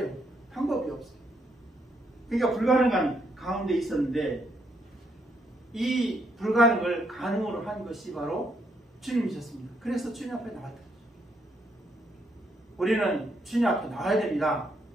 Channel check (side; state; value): both; normal; correlation 0.75